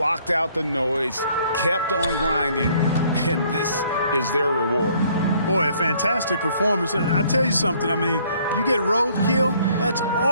out the noise, kept on grinding, and this is their reward. Boy, a fantastic performance. And I tell you something, I mean, you get roadkill, that's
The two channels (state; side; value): inverted; both; correlation -0.62